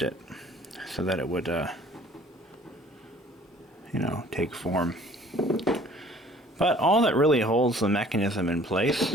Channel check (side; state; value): both; normal; correlation 0.53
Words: it so that it would, you know, take form. But all that really holds the mechanism in place